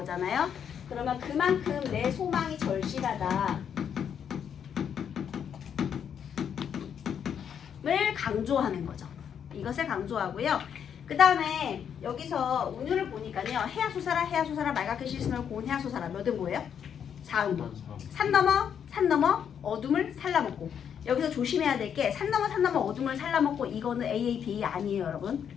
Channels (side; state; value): right; quieter; 8.2 dB